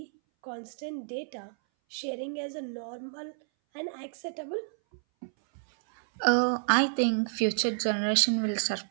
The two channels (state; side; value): silent; left; 58 dB below the other